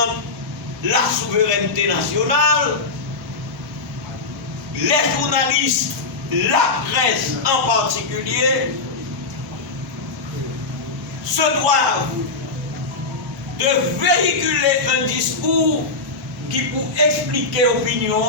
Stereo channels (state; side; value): quieter; right; 3.7 dB